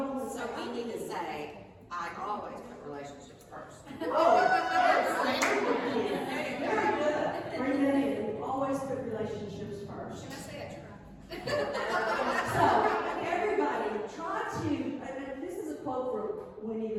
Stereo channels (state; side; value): identical; both; correlation 1.00